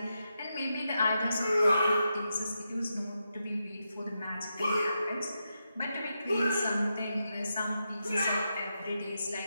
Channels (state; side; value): inverted; both; correlation -0.86